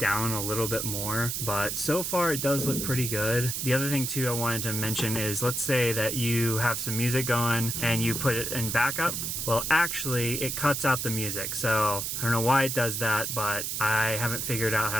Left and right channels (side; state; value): right; noise; hiss, 2 dB below the sound